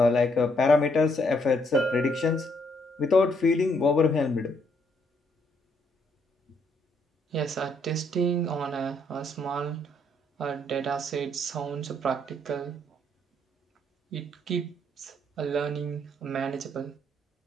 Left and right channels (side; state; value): both; normal; correlation 0.71